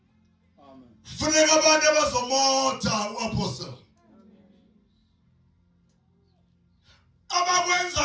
Amen. Funeka abantu abazomotha uApostle.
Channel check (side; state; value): both; identical; correlation 1.00